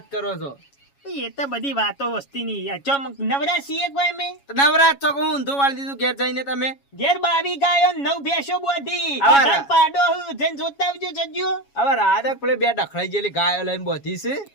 કરો છો એ તો બધી વાતો વસ્તી ની નવરા છીએ કોઈ અમે નવરાત છો હું ઊંધું વાળી દીધું ઘેર જઈને તમે ઘેર 22 ગાયો 9 ભેંસો બોધી પાડો જઈને જોતા આવજો જજો હવે રાધક પેલે બે ડખડાઈ ગયેલી ગાયો લઈને બોધી છે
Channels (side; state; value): right; late; 7.2 ms